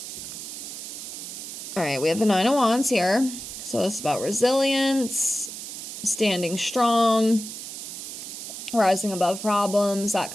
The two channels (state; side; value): noise; right; hiss, 9 dB below the sound